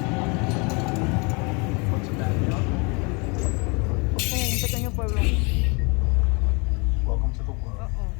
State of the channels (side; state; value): right; quieter; 30.7 dB